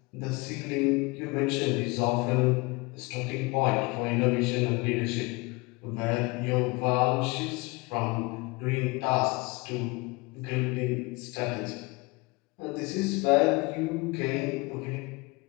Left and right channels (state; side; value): quieter; right; 25.7 dB